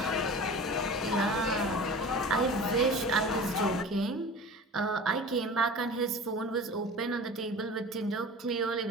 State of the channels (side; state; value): both; normal; correlation 0.36